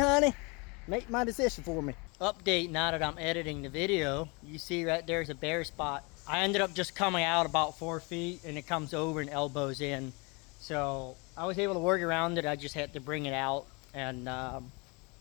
Make my decision for me. Update now that I'm editing the video. You see right there's a bare spot. I ended up just coming out about 4 feet, and it comes over and elbows in. So I was able to work around it. I just had to bring it out, and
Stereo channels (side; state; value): right; quieter; 29.4 dB